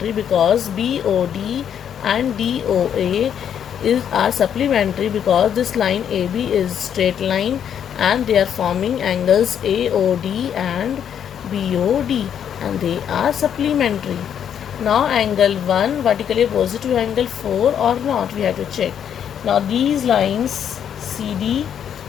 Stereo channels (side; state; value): right; quieter; 8.8 dB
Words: because BOD and DOA are supplementary because this line AB is straight line and they are forming angles AOD and BOD, and they are supplementary. Now angle 1 vertically opposite to angle 4 or not, we have to check. Now these lines CD